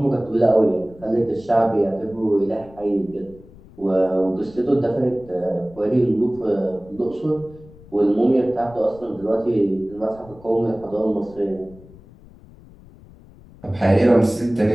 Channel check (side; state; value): left; noise; rumble, 22 dB below the sound